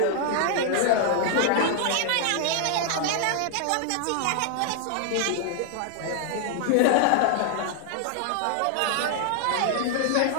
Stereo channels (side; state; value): both; different; correlation 0.00